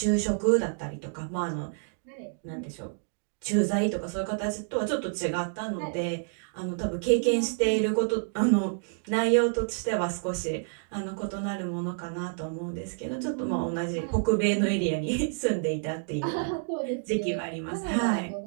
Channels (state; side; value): silent; left; digital silence